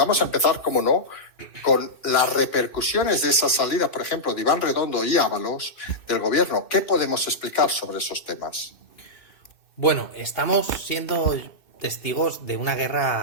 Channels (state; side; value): late; right; 2.6 ms